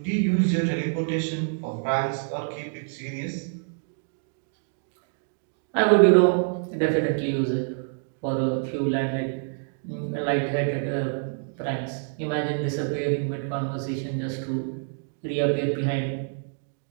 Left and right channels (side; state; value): left; silent; digital silence